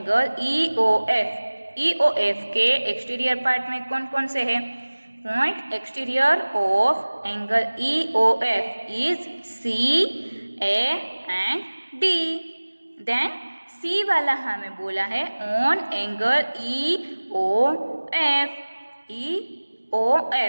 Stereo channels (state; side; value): inverted; both; correlation -1.00